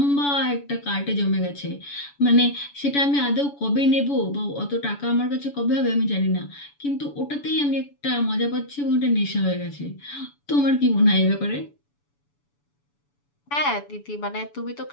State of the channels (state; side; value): late; right; 7.0 ms